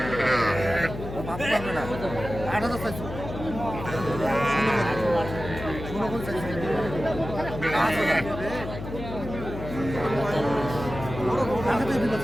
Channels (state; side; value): noise; left; hum, 9 dB below the sound